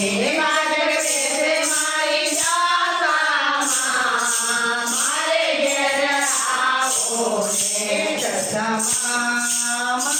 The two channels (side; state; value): both; identical; correlation 1.00